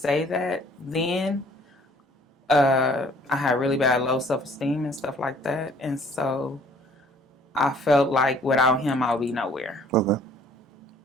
that then I had really bad low self-esteem and stuff like that. And so I felt like without him, I'll be nowhere. Okay.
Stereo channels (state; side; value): normal; both; correlation 0.57